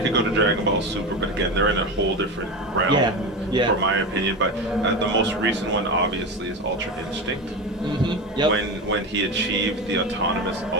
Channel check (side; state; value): both; normal; correlation 0.22